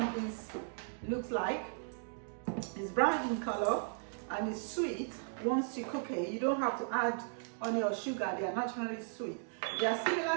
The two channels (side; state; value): left; silent; digital silence